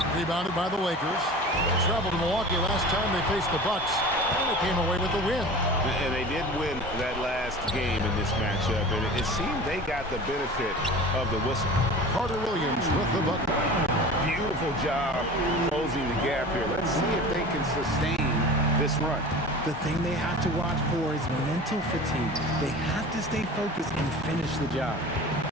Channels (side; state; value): both; normal; correlation 0.37